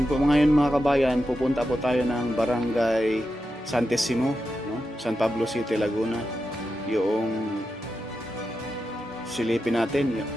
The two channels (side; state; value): both; normal; correlation 0.88